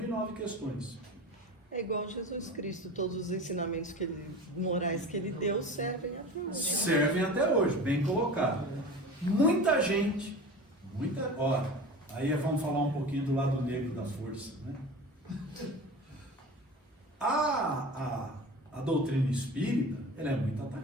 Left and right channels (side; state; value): both; normal; correlation 0.34